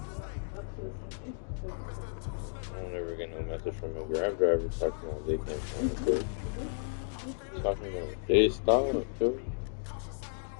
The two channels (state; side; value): silent; right; digital silence